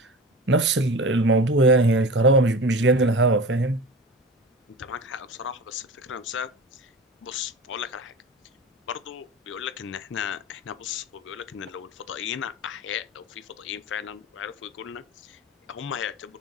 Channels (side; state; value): both; normal; correlation 0.33